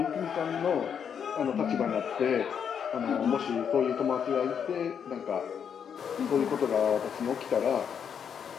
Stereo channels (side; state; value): right; quieter; 7.6 dB